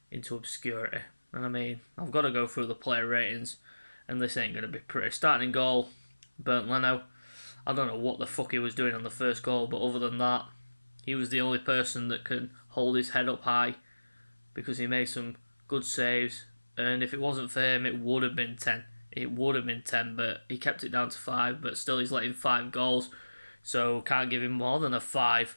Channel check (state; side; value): inverted; both; correlation -1.00